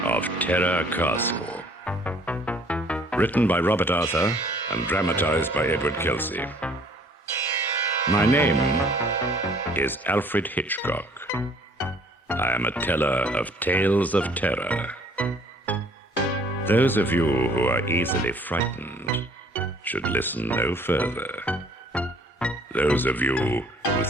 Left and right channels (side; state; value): both; normal; correlation 0.57